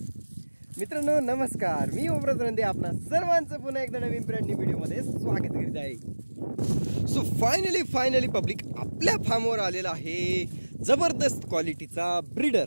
मित्रांनो नमस्कार, मी ओमराज रंदे आपणा सर्वांचं पुन्हा एकदा नवीन ब्रँड न्यू व्हिडिओमध्ये स्वागत करीत आहे। सो फायनली पब्लिक आपल्या फार्मवर आलेला आहे जबरदस्त क्वालिटीचा ब्रीडर।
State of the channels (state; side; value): inverted; both; correlation -1.00